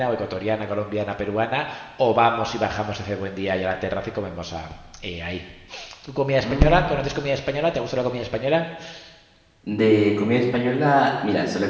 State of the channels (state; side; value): identical; both; correlation 1.00